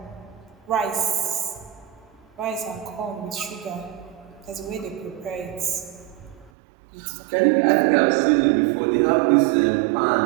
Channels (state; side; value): drops out; left; at 6.5 s